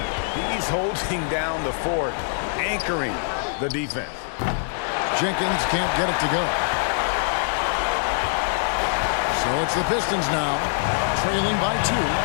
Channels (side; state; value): right; silent; digital silence